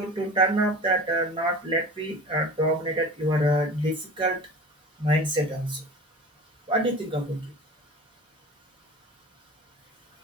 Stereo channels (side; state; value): both; normal; correlation 0.36